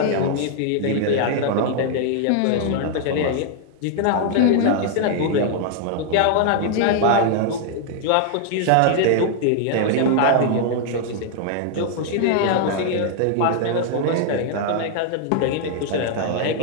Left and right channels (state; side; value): different; both; correlation 0.00